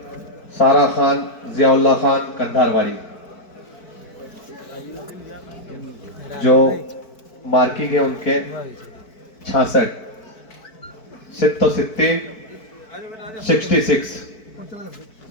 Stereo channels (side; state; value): right; late; 4.6 ms